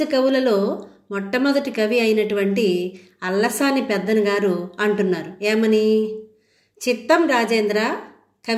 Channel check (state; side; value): identical; both; correlation 1.00